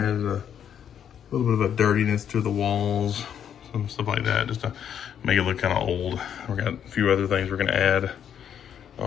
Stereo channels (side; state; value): right; quieter; 8.9 dB